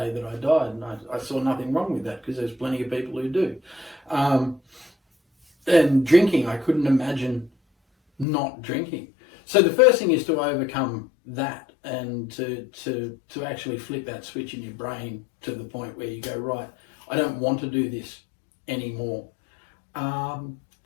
that I died. And I saw nothing wrong with that, because there's plenty of people who do. And drinking, I couldn't imagine not drinking. So the first thing is to overcome that, and to actually flip that switch in your brain to the point where you go, right, I don't want to do this anymore.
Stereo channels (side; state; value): right; drops out; at 8.2 s